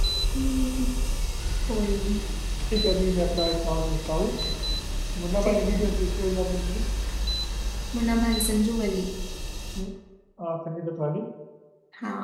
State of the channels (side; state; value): both; identical; correlation 1.00